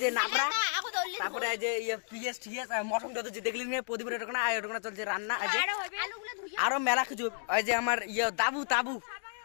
নাবরা, তারপরে আজ পিএস টিএস মটনটা তো দেখলেন প্রদীপের ওখানে ওখানে চলছে রান্না। আজ আলুগুলো ধুইয়া আরো মেলা কিছু। ওই যে আমার তাবু তাবু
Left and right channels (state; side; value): silent; right; digital silence